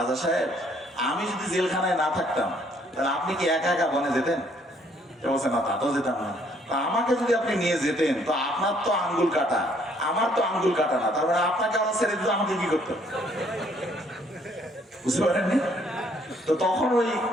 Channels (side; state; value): both; normal; correlation 0.65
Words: সাহেব, আমি যদি জেলখানায় না থাকতাম তাহলে আপনি কি একা একা বনে যেতেন? বলছে না, তা তো যেতাম না। আমাকে যদি আপনি নিয়ে যেতেন, তো আপনার তো আঙ্গুল কাটা, আমার তো আঙ্গুল কাটা না, তার মানে আপনাকে আবার ছেড়ে দিতে আমাকে কি করতে? বুঝতে পারেননি? তো তখন ওই